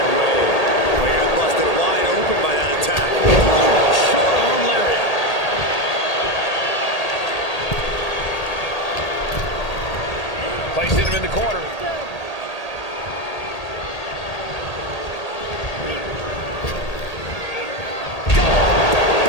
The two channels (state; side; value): late; right; 1.8 ms